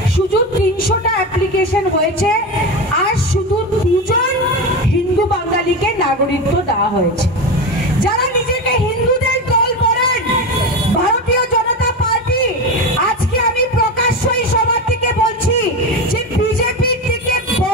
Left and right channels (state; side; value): normal; both; correlation 0.21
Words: শুধু 300টা অ্যাপ্লিকেশন হয়েছে আর শুধু 2জন হিন্দু বাঙালিকে নাগরিকত্ব দেওয়া হয়েছে। যারা নিজেকে হিন্দুদের দল করেন ভারতীয় জনতা পার্টি, আজকে আমি প্রকাশ্যই সবার থেকে বলছি যে বিজেপির থেকে